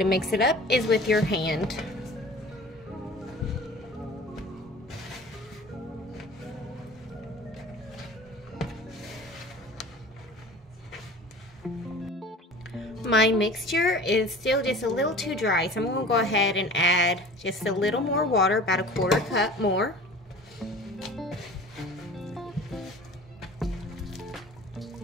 mix it up is with your hand. My mixture is still just a little too dry, so I'm going to go ahead and add just a little more water, about a 1/4 cup more.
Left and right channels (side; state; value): both; normal; correlation 0.42